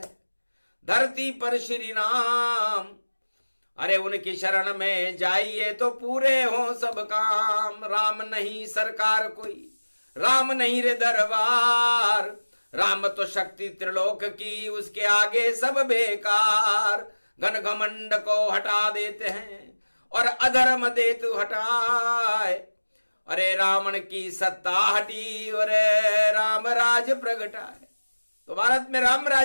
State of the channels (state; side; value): inverted; both; correlation -1.00